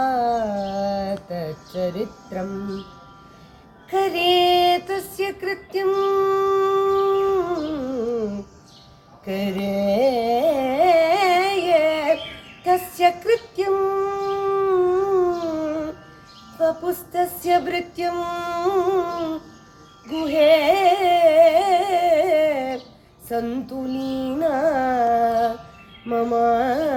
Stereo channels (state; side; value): identical; both; correlation 1.00